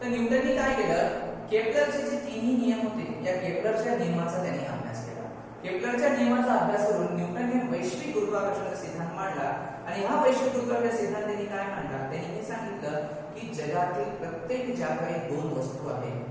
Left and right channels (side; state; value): both; identical; correlation 1.00